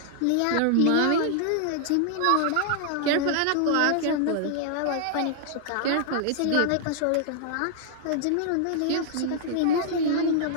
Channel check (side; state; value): both; different; correlation -0.01